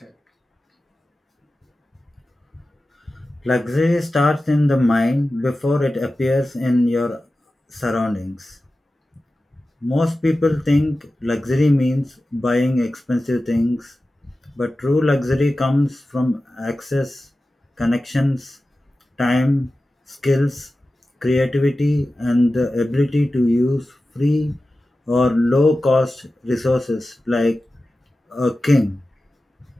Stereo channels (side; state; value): both; normal; correlation 0.94